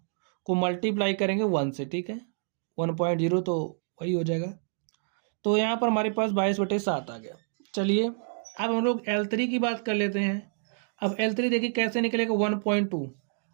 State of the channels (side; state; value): left; silent; digital silence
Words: को मल्टीप्लाई करेंगे 1 से, ठीक है। 1.0 तो वही हो जाएगा। तो यहाँ पर हमारे पास 22/7 आ गया। चलिए अब हम लोग L3 की बात कर लेते हैं। अब L3 देखिए कैसे निकलेगा 1.2।